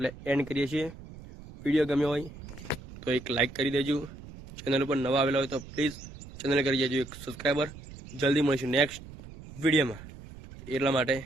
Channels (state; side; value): noise; right; rumble, 15 dB below the sound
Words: એન્ડ કરીએ છીએ. વિડીયો ગમ્યો હોય તો એક લાઈક કરી દેજો. ચેનલ પર નવા આવેલા હોય તો પ્લીઝ ચેનલ કરી દેજો એક સબસ્ક્રાઈબર. જલ્દી મળીશું નેક્સ્ટ વિડીયોમાં. એટલા માટે